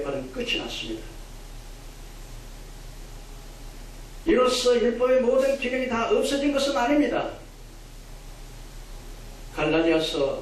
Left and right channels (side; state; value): both; identical; correlation 1.00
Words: 끝이 났습니다. 이로써 율법의 모든 기능이 다 없어진 것은 아닙니다.